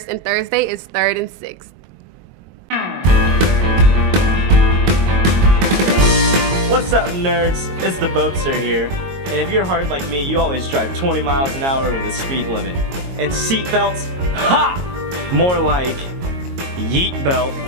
and Thursday is 3rd and 6th. What's up, nerds? It's the Boatster here. And if you're hard like me, you always drive 20 miles an hour over the speed limit. And seatbelts? Ha! More like yeet belt.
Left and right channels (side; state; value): left; late; 22 ms